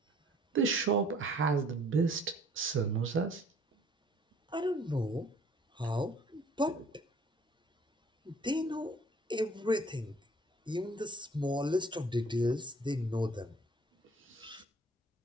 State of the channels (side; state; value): both; normal; correlation 0.56